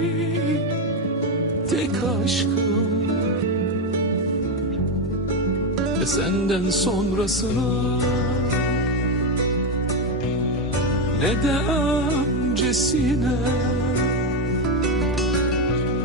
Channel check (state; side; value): normal; both; correlation 0.09